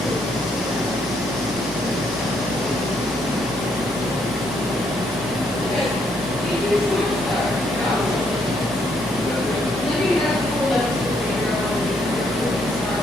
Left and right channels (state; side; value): normal; both; correlation 0.72